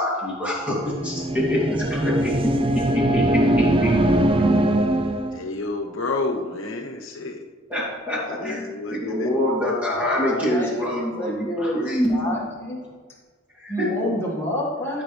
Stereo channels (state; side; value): normal; both; correlation 0.60